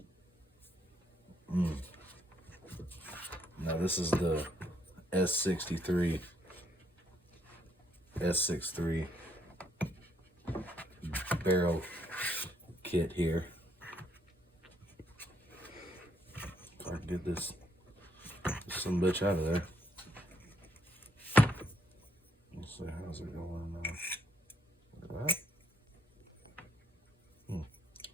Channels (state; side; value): normal; both; correlation 0.72